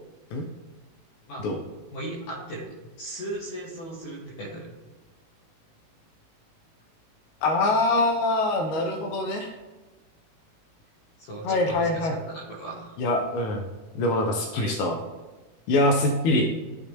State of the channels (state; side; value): late; right; 19 ms